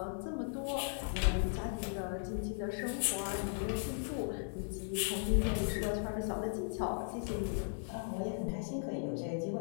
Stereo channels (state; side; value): silent; right; 53 dB below the other